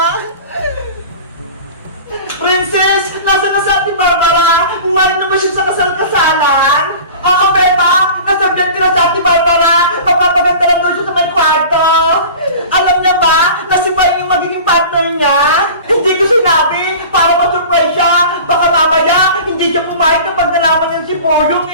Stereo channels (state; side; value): inverted; both; correlation -0.38